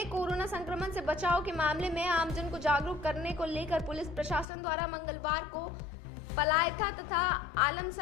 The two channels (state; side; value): drops out; right; at 4.5 s